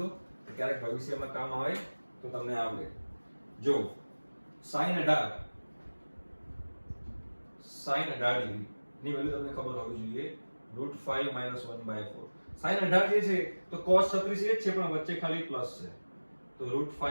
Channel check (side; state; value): both; inverted; correlation -1.00